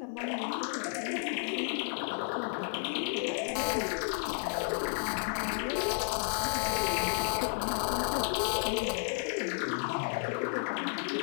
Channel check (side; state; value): right; silent; digital silence